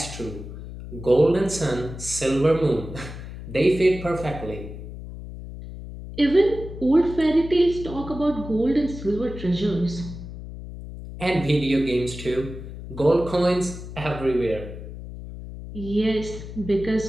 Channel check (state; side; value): noise; left; hum, 11 dB below the sound